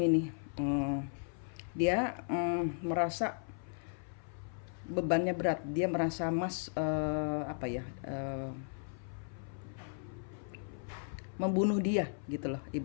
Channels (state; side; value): silent; right; 54 dB below the other